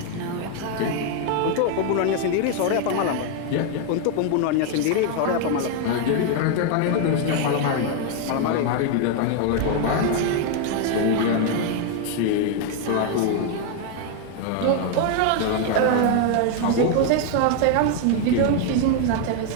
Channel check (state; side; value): different; both; correlation 0.01